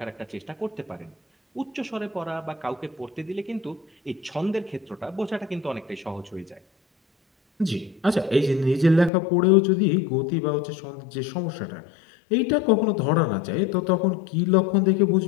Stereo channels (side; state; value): right; drops out; at 9.1 s